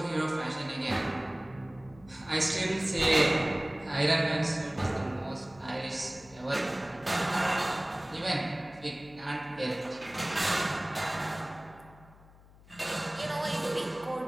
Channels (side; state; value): left; noise; hum, 24 dB below the sound